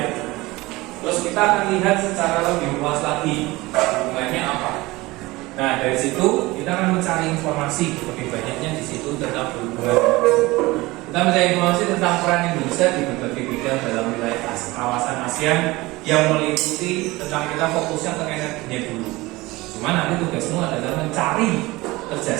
Terus kita akan lihat secara lebih luas lagi hubungannya apa. Nah dari situ kita akan mencari informasi lebih banyaknya di situ tentang hubungan. Kita mencari informasi tentang peran Indonesia di berbagai bidang dalam wilayah kawasan ASEAN yang meliputi tentang kita fokusnya ke energinya dulu. Cuma nanti tugasmu adalah mencari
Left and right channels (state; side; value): quieter; left; 20.8 dB